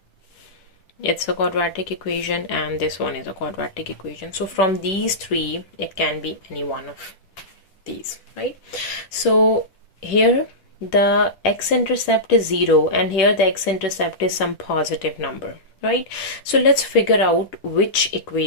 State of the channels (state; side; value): late; right; 10 ms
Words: it's a quadratic equation, and this one is a quadratic equation. So from these 3, it can be any one of these, right? So here the x-intercept is 0 and here the x-intercept is some positive number, right? So let's figure out which